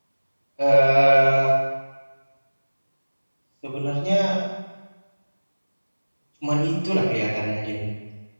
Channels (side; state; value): both; inverted; correlation -1.00